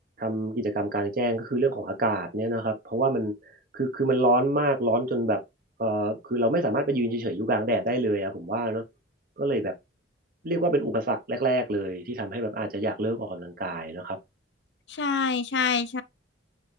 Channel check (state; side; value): normal; both; correlation 0.23